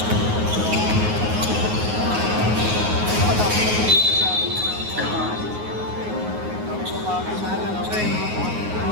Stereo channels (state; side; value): late; left; 9.5 ms